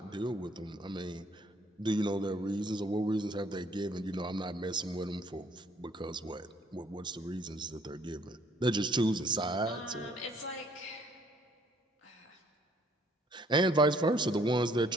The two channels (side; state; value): both; normal; correlation 0.62